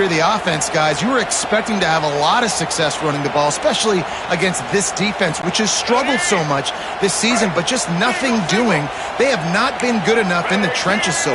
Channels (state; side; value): identical; both; correlation 1.00